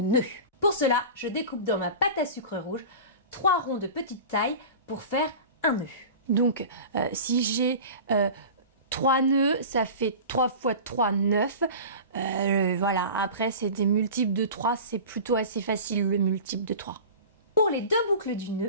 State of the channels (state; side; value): inverted; both; correlation -0.34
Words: nœuds. Pour cela, je découpe dans ma pâte à sucre rouge 3 ronds de petite taille pour faire un nœud. Donc, si j'ai 3 nœuds, ça fait 3 fois 3, 9. Voilà, après, c'est des multiples de 3. C'est plutôt assez facile, le multiple de 3. Pour les 2 boucles du